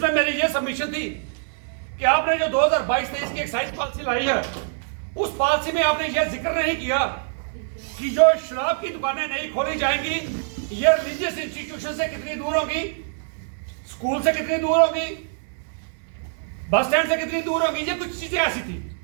मेरी ये सबमिशन थी कि आपने जो 2022-23 की एक्साइज पॉलिसी लाई है उस पॉलिसी में आपने यह जिक्र नहीं किया कि जो शराब की दुकानें नहीं खोली जाएंगी ये रिलीजियस इंस्टीट्यूशन से कितनी दूर होगी, स्कूल से कितनी दूर होगी, बस स्टैंड से कितनी दूर होगी। ये कुछ चीजें ऐसी थी।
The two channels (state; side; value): silent; left; digital silence